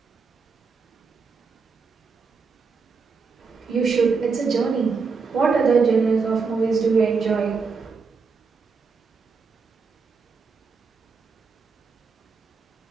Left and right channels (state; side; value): quieter; left; 5.0 dB